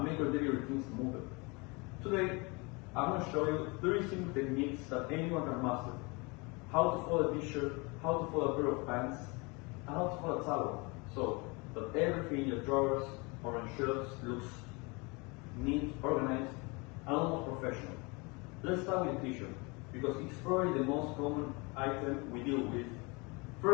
make your daily routine smoother. Today, I'm going to show you 3 simple techniques that anyone can master. How to fold a t-shirt, how to fold a pair of pants, and how to fold a towel, so that everything in your drawers or on shelves looks neat, organized, and almost professional. Let's start with a t-shirt, because it's probably the most common item we deal with.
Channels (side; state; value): right; quieter; 28.1 dB